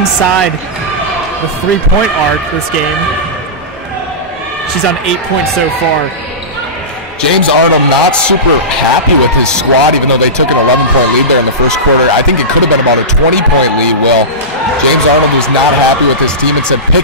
the 3-point arc this game. She's on 8 points so far. James Arnold not super happy with his squad, even though they took an 11-point lead there in the first quarter. I think it could have been about a 20-point lead, Will. James Arnold was not happy with his team and said,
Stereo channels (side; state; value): both; normal; correlation -0.19